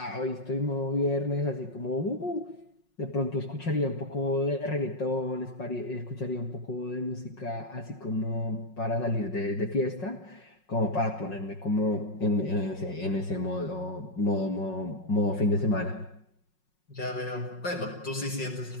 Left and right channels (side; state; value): right; late; 5.5 ms